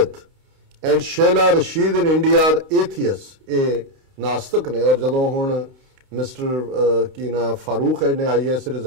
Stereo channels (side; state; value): left; late; 29 ms